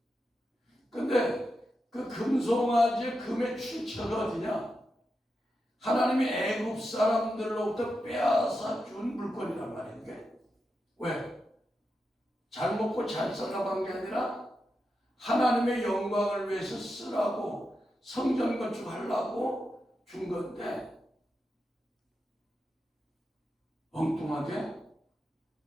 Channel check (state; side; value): normal; both; correlation 0.88